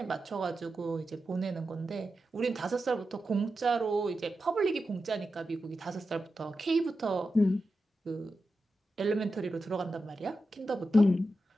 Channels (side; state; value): both; normal; correlation 0.90